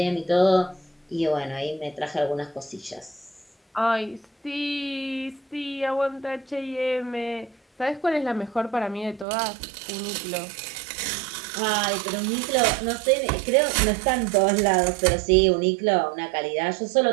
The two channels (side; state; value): left; drops out; at 9.2 s